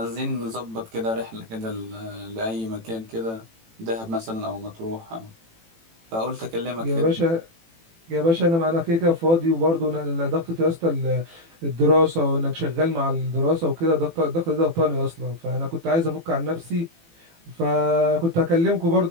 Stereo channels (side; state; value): left; late; 18 ms